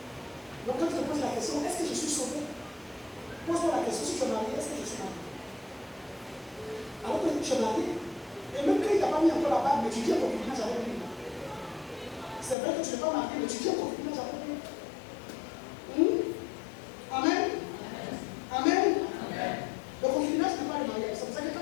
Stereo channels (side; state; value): right; drops out; at 12.6 s